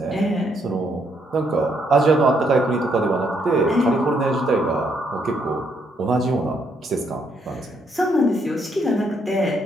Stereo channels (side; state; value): both; normal; correlation 0.73